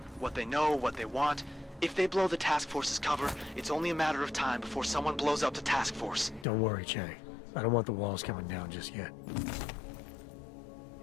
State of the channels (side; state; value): right; drops out; at 6.5 s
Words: What they know, what they want. If they blow the task force's cover, it's only a matter of time before someone blows up the task force. Don't worry, Che. I don't want the walls coming down just yet.